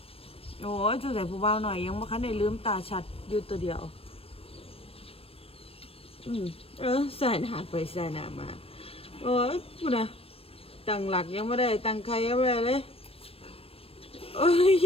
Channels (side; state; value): right; late; 0.28 ms